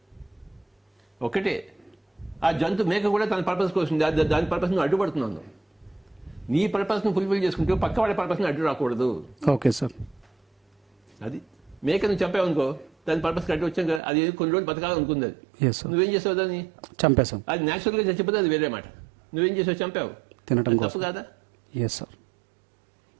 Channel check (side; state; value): left; drops out; at 14.0 s